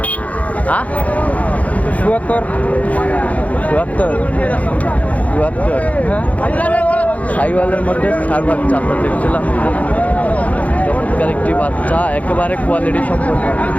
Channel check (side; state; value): right; late; 0.069 ms